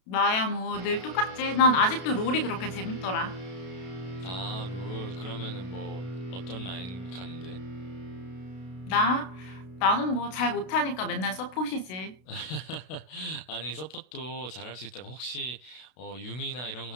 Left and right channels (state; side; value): late; right; 32 ms